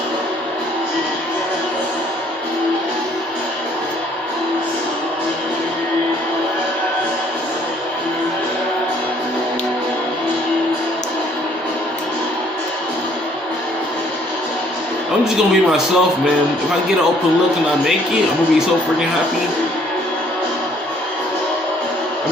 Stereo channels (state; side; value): normal; both; correlation 0.62